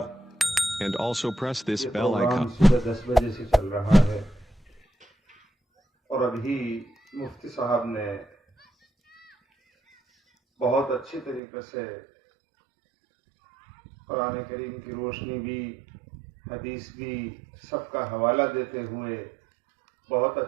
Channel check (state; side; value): drops out; left; at 11.4 s